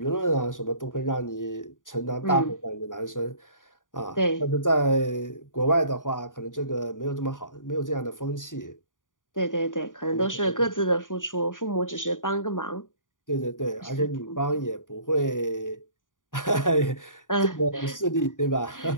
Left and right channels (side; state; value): right; late; 0.88 ms